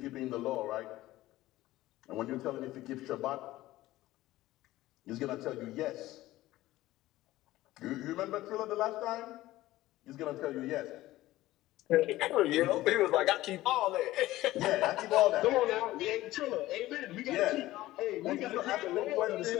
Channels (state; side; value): quieter; right; 16.5 dB